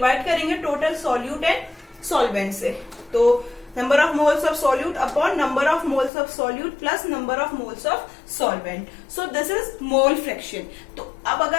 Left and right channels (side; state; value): right; drops out; at 6.1 s